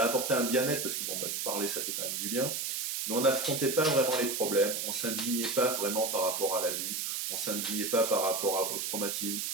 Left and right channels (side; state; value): right; noise; hiss, 2 dB below the sound